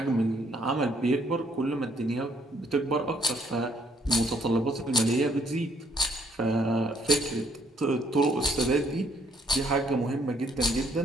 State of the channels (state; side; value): normal; both; correlation 0.67